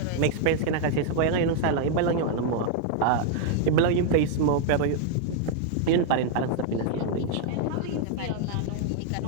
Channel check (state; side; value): different; both; correlation 0.00